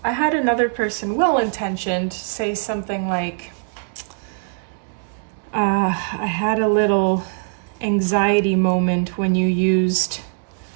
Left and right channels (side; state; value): left; silent; digital silence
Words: I had another person, well-intentioned, say something like, I had a little anxiety moment when you used